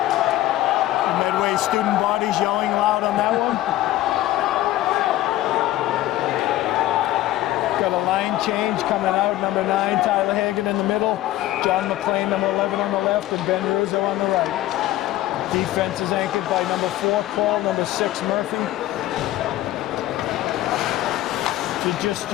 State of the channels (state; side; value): quieter; right; 15.0 dB